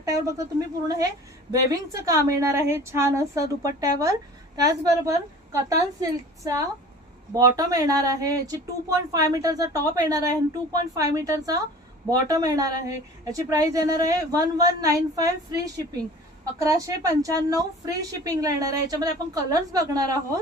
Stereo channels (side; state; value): both; normal; correlation 0.43